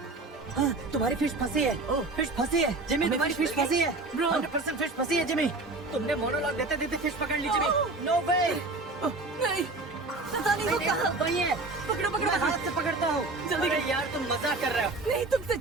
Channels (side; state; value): left; quieter; 3.3 dB